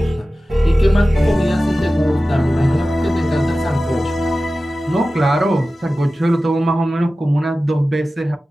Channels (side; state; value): both; normal; correlation 0.95